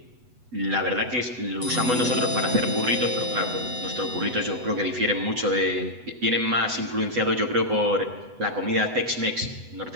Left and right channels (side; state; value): left; late; 8.1 ms